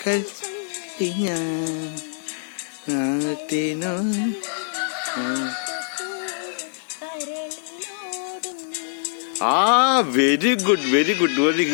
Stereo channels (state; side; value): silent; right; digital silence